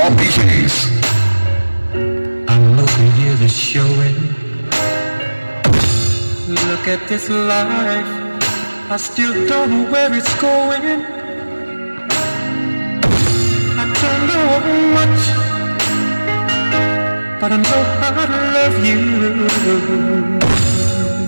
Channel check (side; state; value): both; inverted; correlation -1.00